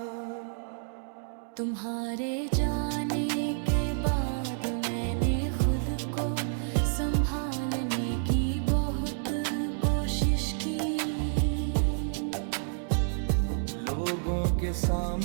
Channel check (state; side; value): silent; left; digital silence